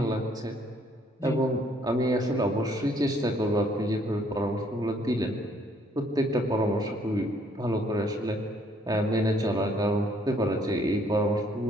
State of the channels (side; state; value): both; normal; correlation 0.65